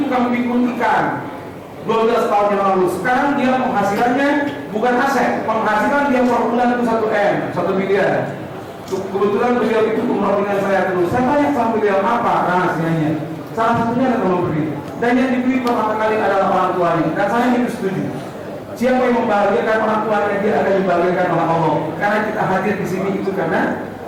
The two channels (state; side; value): identical; both; correlation 1.00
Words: tukang pikul ikan 12 tahun yang lalu. Sekarang dia penghasilannya bukan aset, penghasilan dia per bulan itu 1 M, 1 miliar. Kebetulan beliau itu umroh dengan saya terus. Saya tanya sama beliau apa rahasianya. Salah satunya adalah memberi, dan yang diberi pertama kali adalah orang tuanya. Dan saya itu setuju. Siapa yang membahagiakan orang tuanya, dia akan dibahagiakan oleh Allah. Karena kita hadir di sini itu karena